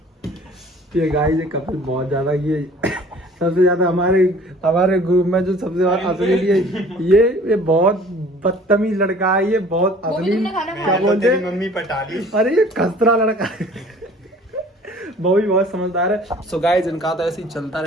ये गाइस ये कपिल बहुत ज्यादा, ये सबसे ज्यादा हमारे ग्रुप में जो सबसे ज्यादा असली ये बहुत बदतमीज लड़का है। ये बहुत वो भी असली, तुमने खाना क्या खाया? बोलते तेरी हैं? मम्मी पटा ली। अरे ये खसरा लड़का है। वो भी बहुत समझदार है। सो गाइस इनका तो ऐसे ही चलता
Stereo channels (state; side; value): normal; both; correlation 0.50